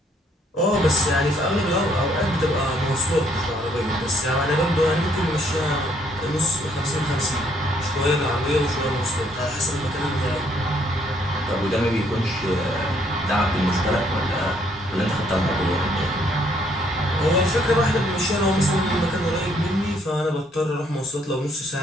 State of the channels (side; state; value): both; normal; correlation 0.67